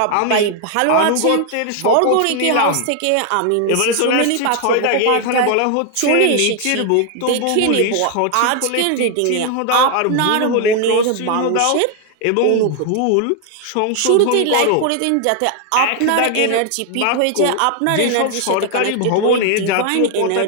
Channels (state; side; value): different; both; correlation 0.00